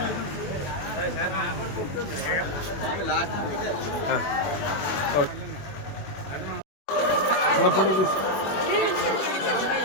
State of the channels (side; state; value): right; late; 21 ms